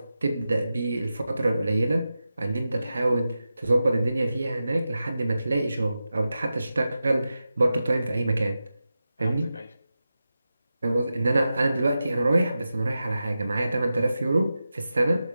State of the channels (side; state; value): both; inverted; correlation -0.92